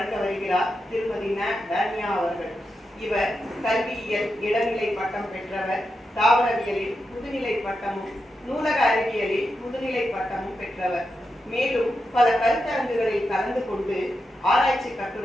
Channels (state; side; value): normal; both; correlation 0.87